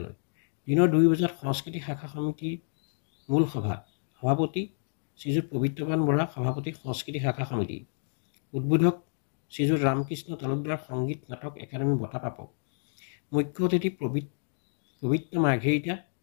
দিনৰ 2 বজাত সংস্কৃতি শাখা সমিতিৰ মূল সভা। সভাপতি শ্ৰীযুত পবিত্ৰবান বৰা, সভাপতি সংস্কৃতি শাখা সমিতি। উদ্বোধক শ্ৰীযুত ৰামকৃষ্ণ তালুকদাৰ, সংগীত নাটক একাডেমী বঁটা প্ৰাপক। মুখ্য অতিথি পবিত্ৰ মাৰ্ঘেৰিটা,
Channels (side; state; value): right; silent; digital silence